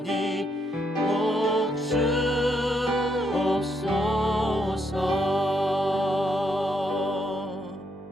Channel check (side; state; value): both; normal; correlation 0.75